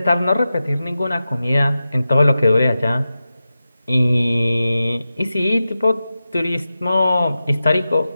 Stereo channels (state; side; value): inverted; both; correlation -0.93